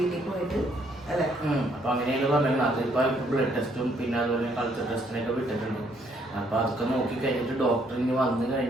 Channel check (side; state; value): both; normal; correlation 0.68